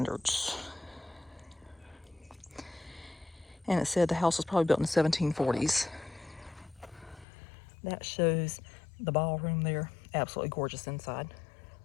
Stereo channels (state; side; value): drops out; right; at 7.2 s